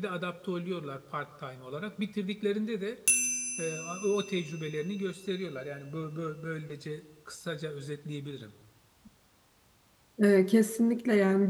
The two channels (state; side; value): identical; both; correlation 1.00